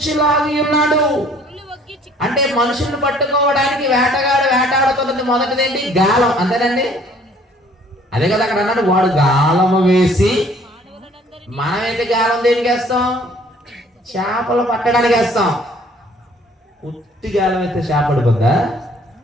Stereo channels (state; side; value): normal; both; correlation 0.57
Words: ఉన్నాడు. అంటే మనుషుల్ని పట్టుకోవడానికి వేటగాడు వేటాడుతున్నది మొదటిదేంటి? గాలం. అంతేనండి? అదే కదా అక్కడ అన్నాడు, వాడు గాలము వేసి. మనమైతే గాలం దేనికి వేస్తాం? చేపలు పట్టడానికి వేస్తాం. ఉత్తి గాలం అయితే చేప పడిపోద్దా?